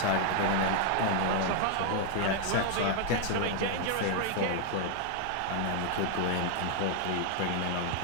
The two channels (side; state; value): both; different; correlation 0.00